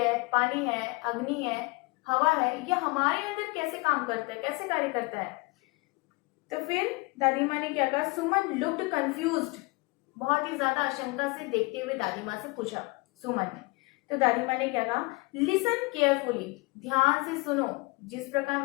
पानी है, अग्नि है, हवा है, ये हमारे अंदर कैसे काम करता है, कैसे कार्य करता है। तो फिर दादी माँ ने क्या कहा, सुमन लुक्ड कंफ्यूज्ड, बहुत ही ज्यादा आशंका से देखते हुए दादी माँ से पूछा सुमन ने। तो दादी माँ ने क्या कहा, लिसन केयरफुली, ध्यान से सुनो। जिस प्रकार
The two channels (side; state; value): right; quieter; 26.7 dB